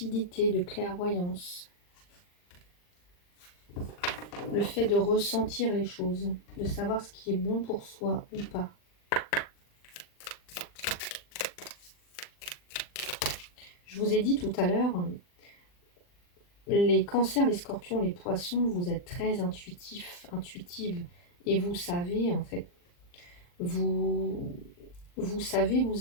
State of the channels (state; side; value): late; right; 40 ms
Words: de clairvoyance. Le fait de ressentir les choses, de savoir ce qui est bon pour soi ou pas. Je vous ai dit tout à l'heure, les cancers, les scorpions, les poissons, vous êtes très intuitifs, intuitives. Et vous savez, en fait, vous, vous savez